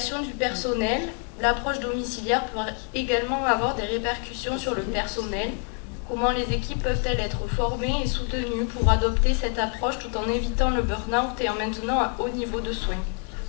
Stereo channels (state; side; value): quieter; right; 36.6 dB